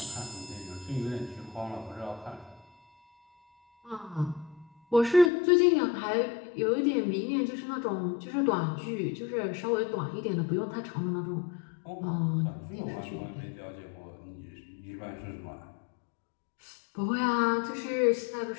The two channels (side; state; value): right; drops out; at 5.3 s